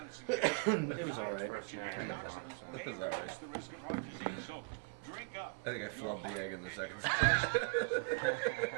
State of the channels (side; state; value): left; quieter; 32.8 dB